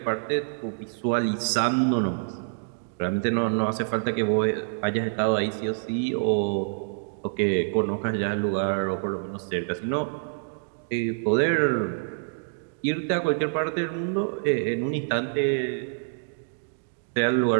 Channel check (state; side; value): silent; left; digital silence